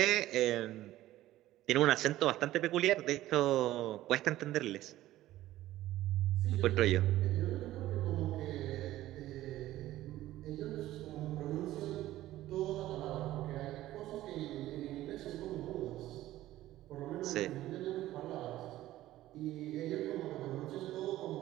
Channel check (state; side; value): quieter; left; 15.0 dB